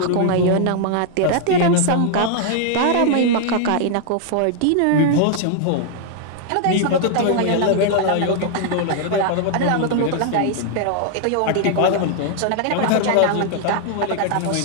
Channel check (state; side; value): different; both; correlation -0.01